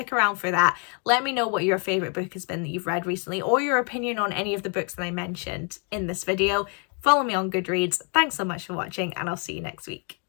around for that. Let me know what your favourite book has been that you've read recently, or your opinion on any of the books that I mentioned in this video. Follow me on Goodreads. Thanks so much for watching, and I'll see you next week.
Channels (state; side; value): quieter; right; 37.1 dB